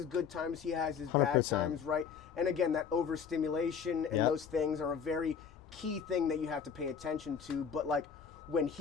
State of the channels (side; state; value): right; quieter; 6.9 dB